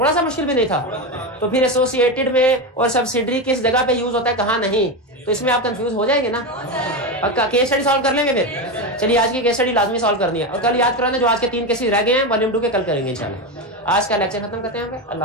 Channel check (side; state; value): both; normal; correlation 0.15